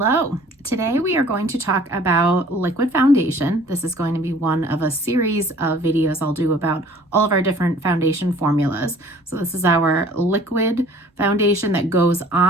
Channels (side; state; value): both; normal; correlation 0.51